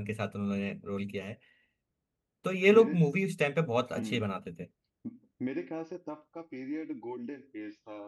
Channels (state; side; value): identical; both; correlation 1.00